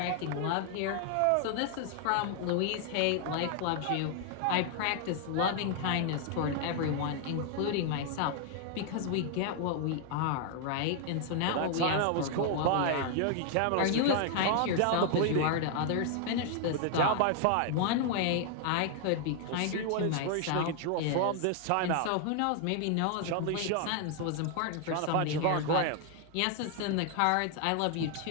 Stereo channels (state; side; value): different; both; correlation 0.00